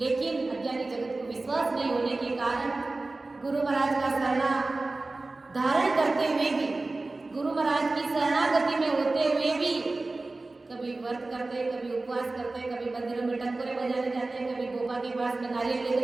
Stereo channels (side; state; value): left; quieter; 3.2 dB